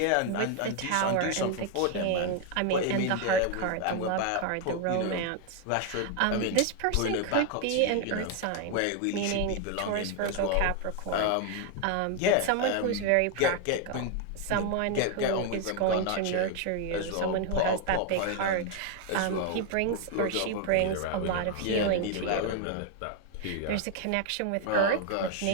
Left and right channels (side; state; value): both; different; correlation 0.01